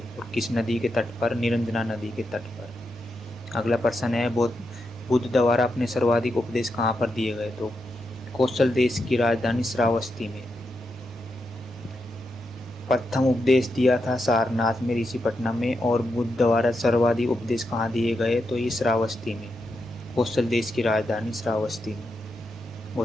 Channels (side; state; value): both; normal; correlation 0.85